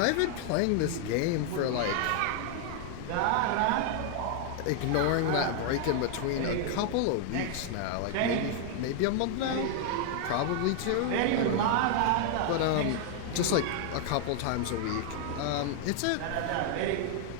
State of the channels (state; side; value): different; both; correlation 0.00